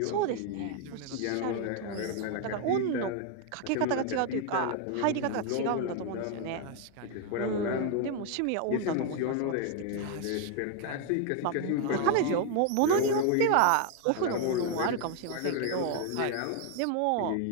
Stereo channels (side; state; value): both; different; correlation 0.00